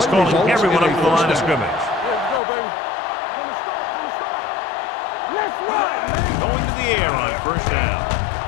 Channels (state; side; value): drops out; right; at 2.4 s